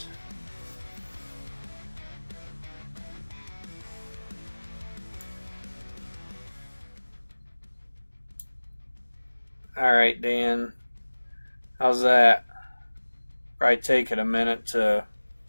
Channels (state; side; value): inverted; both; correlation -1.00